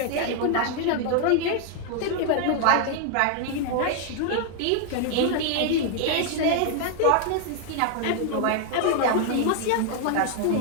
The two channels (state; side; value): different; both; correlation 0.00